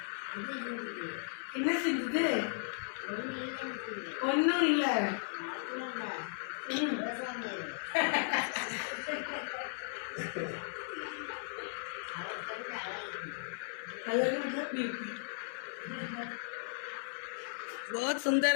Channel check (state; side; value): silent; right; 54 dB below the other